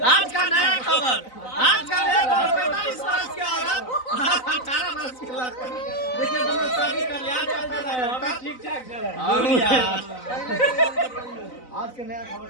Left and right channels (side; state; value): right; late; 3.9 ms